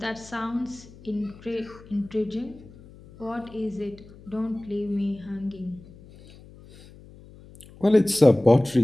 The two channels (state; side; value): noise; left; hum, 21 dB below the sound